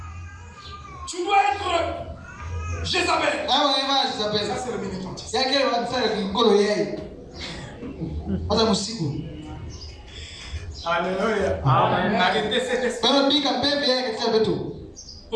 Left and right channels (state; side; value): identical; both; correlation 1.00